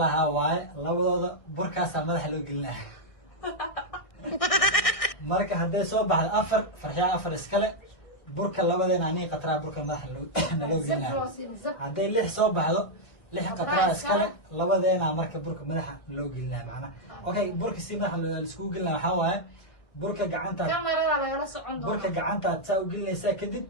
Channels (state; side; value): late; right; 1.6 ms